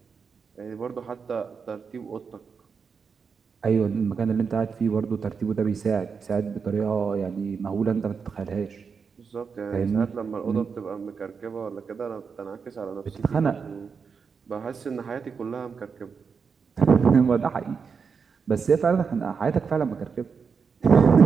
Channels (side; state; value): left; quieter; 5.8 dB